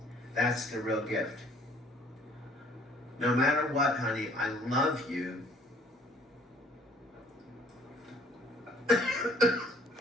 That's the real gift. No matter what, honey, I love you.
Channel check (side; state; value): both; normal; correlation 0.59